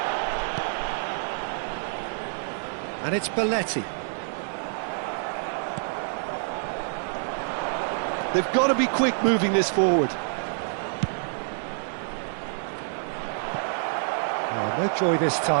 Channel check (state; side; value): silent; left; digital silence